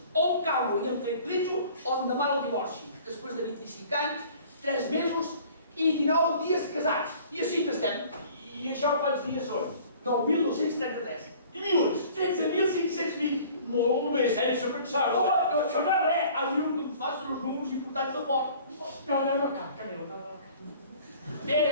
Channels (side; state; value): both; inverted; correlation -0.49